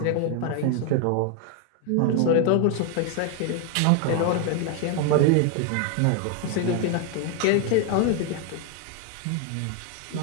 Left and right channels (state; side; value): different; both; correlation 0.01